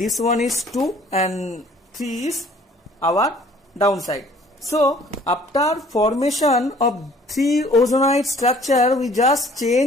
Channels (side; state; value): both; normal; correlation 0.55